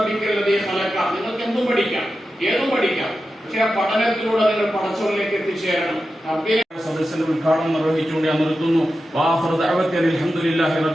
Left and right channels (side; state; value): both; normal; correlation 0.91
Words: ഖലഖ, നിങ്ങൾക്ക് എന്തും പഠിക്കാം, ഏതും പഠിക്കാം, പക്ഷെ ആ പഠനത്തിലൂടെ നിങ്ങൾ പടച്ചോറിലേക്ക് എത്തിച്ചേരണം. സദസ്സിന്റെ ഉദ്ഘാടനം നിർവഹിച്ചുകൊണ്ട് ഞാൻ നിർത്തുന്നു.